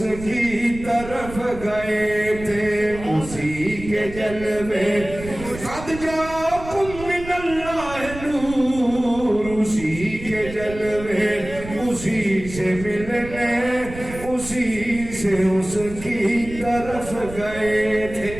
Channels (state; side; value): noise; right; rumble, 13 dB below the sound